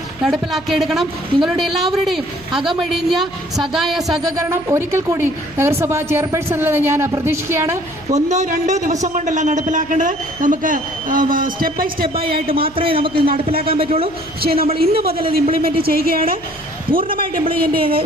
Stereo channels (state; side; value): noise; right; hum, 24 dB below the sound